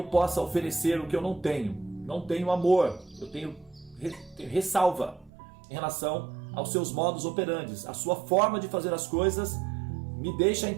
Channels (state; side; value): drops out; left; at 5.3 s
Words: possa oferecer o que eu não tenho. Não tenho amor, eu tenho ressalva em relação aos seus modus operandi. A sua forma de fazer as coisas me deixa